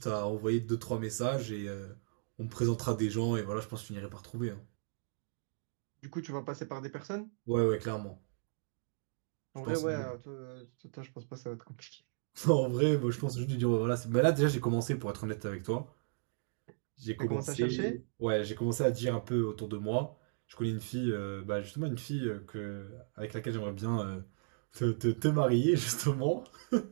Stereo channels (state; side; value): silent; left; digital silence